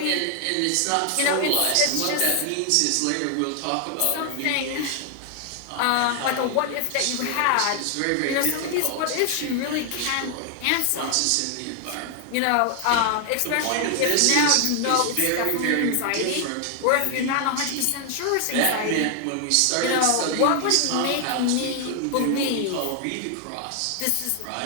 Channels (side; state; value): both; different; correlation 0.00